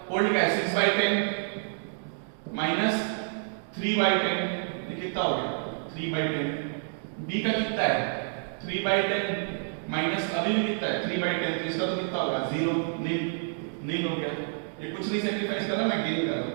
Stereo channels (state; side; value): silent; left; digital silence